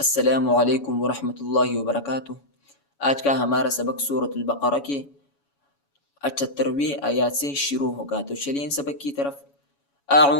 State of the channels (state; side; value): late; right; 7.1 ms